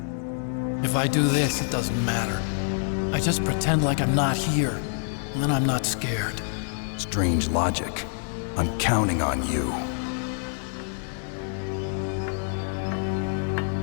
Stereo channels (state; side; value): silent; right; 61 dB below the other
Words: If I do this, it doesn't matter. I just pretend like I'm not here, and then I'm not scared. Strange logic. I'm counting on you.